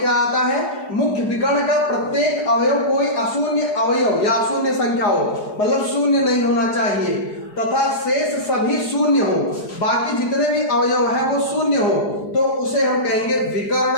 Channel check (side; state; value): right; late; 4.8 ms